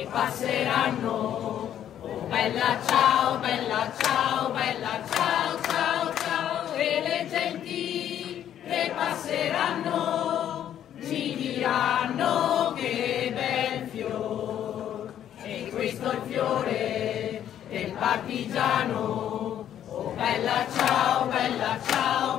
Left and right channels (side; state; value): right; quieter; 10.5 dB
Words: passeranno. Oh bella ciao, bella ciao, bella ciao, ciao, ciao. E le genti che passeranno ci diranno che bel fior. E questo è il fiore del partigiano. Oh bella ciao, bella ciao,